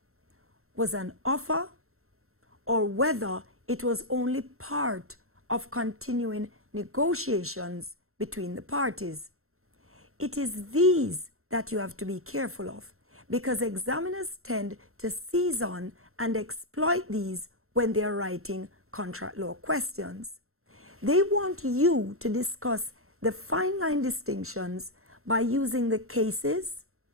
was an offer or whether it was only part of continuing negotiations between the parties. It is these that you have to be careful of, because examiners tend to seize on and exploit these when they are writing contract law questions. They want you to discuss the fine line distinctions by using the cases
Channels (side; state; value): left; late; 0.62 ms